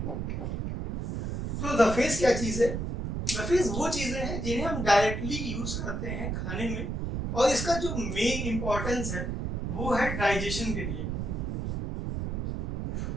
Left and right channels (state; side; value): noise; right; rumble, 2 dB below the sound